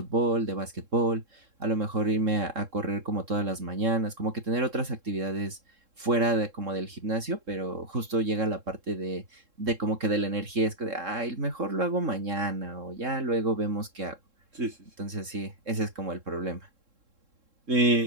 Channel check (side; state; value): left; late; 3.7 ms